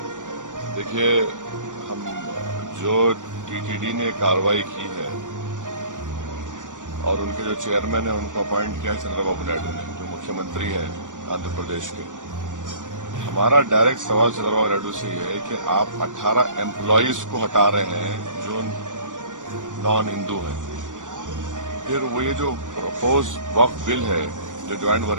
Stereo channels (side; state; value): left; late; 0.87 ms